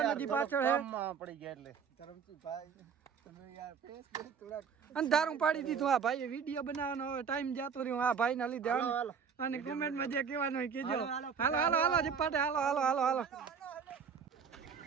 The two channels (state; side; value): quieter; left; 6.5 dB